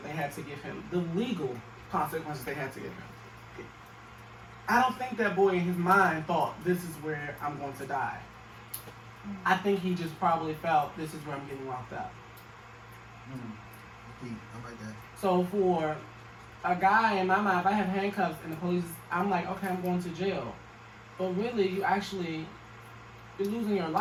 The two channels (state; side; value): identical; both; correlation 1.00